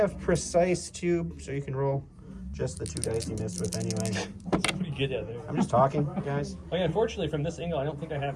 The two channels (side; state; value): both; identical; correlation 1.00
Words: precise too, so you can roll just the 2 dice he missed with anyway. Pretty good out there. I'm just talking, guys. Oh yeah, unfortunately from this angle, I don't think I have